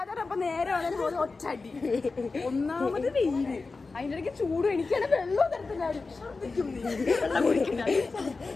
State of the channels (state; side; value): quieter; right; 4.0 dB